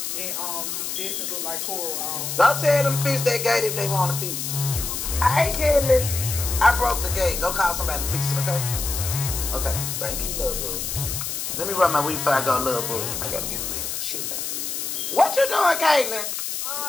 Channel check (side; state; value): left; noise; hiss, 4 dB below the sound